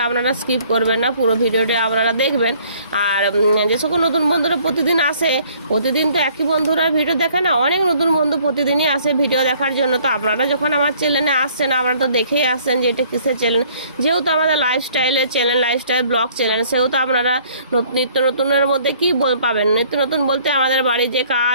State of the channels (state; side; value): inverted; both; correlation -0.58